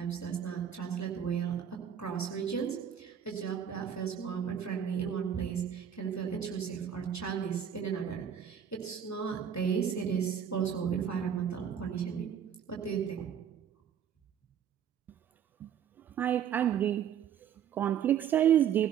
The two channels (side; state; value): left; quieter; 8.6 dB